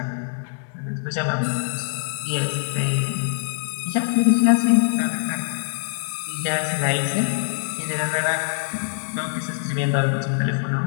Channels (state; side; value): silent; right; 59 dB below the other